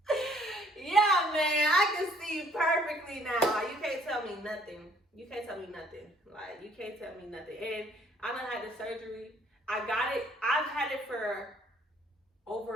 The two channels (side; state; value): both; normal; correlation 0.61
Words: Yeah, man, I can see you perfectly now. Like, you can't tell me nothing. You can't tell me nothing. Like, you can't tell me nothing. And I done had the surgery. I got it. I've had it for